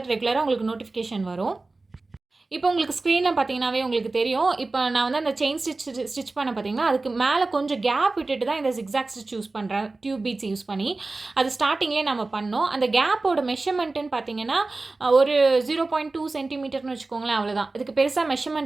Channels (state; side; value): quieter; left; 3.4 dB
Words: ரெகுலராக உங்களுக்கு நோட்டிஃபிகேஷன் வரும். இப்போ உங்களுக்கு ஸ்க்ரீனில் பார்த்தீங்கன்னாவே உங்களுக்கு தெரியும். இப்போ நான் வந்து அந்த செயின் ஸ்டிச் பண்ண பார்த்தீங்கன்னா அதுக்கு மேலே கொஞ்சம் கேப் விட்டுட்டு தான் இந்த ஜிக்ஸாக் ஸ்டிச் யூஸ் பண்ணுறேன், டியூப் பீட்ஸ் யூஸ் பண்ணி. அது ஸ்டார்டிங்லேயே நம்ம பண்ணோம். அந்த கேப்போட மெஷர்மெண்ட்டுன்னு பார்த்தீங்கன்னா ஒரு 0.2 சென்டிமீட்டர்னு வச்சுக்கோங்களேன், அவ்வளோதான். இதுக்கு பெருசாக